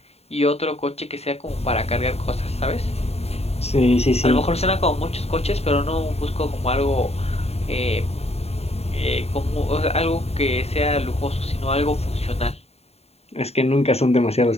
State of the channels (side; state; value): right; late; 0.30 ms